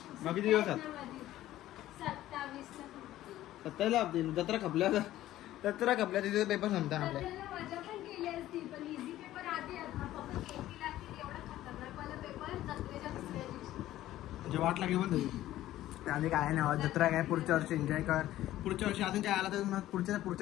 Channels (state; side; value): quieter; right; 14.3 dB